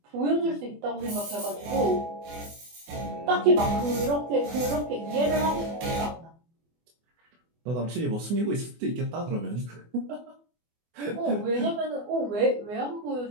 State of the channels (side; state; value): left; late; 24 ms